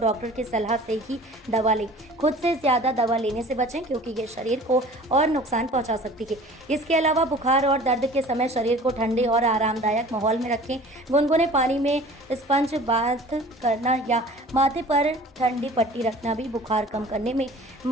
की सलाह से ही दवा लें। खुद से ज़्यादा दवा लेने से बचें क्योंकि ये शरीर को और नुकसान पहुंचा सकती है। इसके अलावा बुखार और दर्द के समय शरीर को ठंडे और आरामदायक माहौल में रखें। गुनगुने पानी में स्पंज बाथ करना या माथे पर ठंडी पट्टी रखना भी बुखार कम करने में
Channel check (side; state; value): both; normal; correlation 0.45